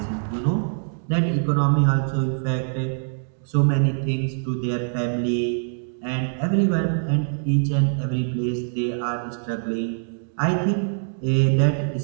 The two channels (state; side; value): silent; left; digital silence